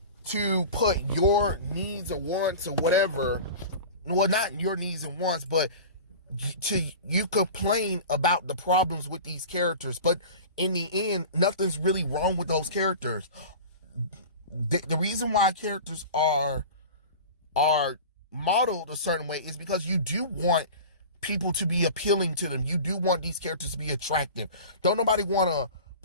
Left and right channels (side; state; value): both; inverted; correlation -0.35